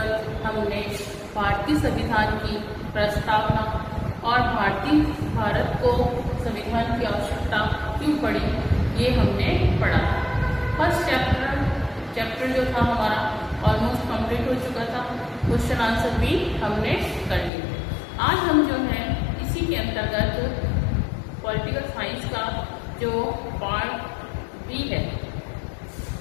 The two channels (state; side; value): drops out; right; at 17.5 s